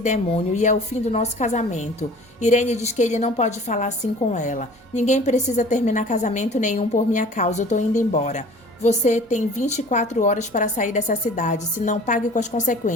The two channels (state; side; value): normal; both; correlation 0.46